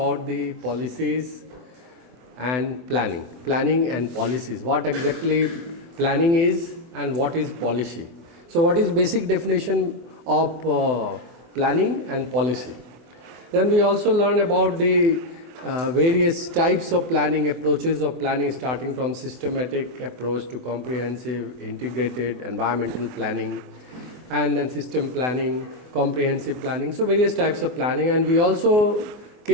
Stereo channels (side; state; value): left; late; 24 ms